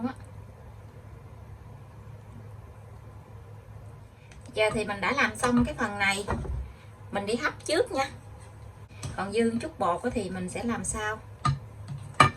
á. Giờ thì mình đã làm xong cái phần này, mình đi hấp trước nha. Còn dư chút bột thì mình sẽ làm sau.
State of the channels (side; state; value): both; identical; correlation 1.00